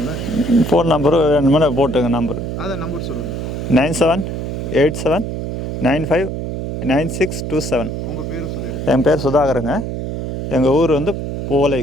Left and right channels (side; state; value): right; noise; hum, 4 dB below the sound